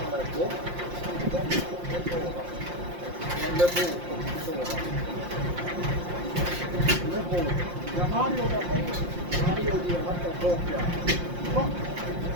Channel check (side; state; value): left; late; 5.7 ms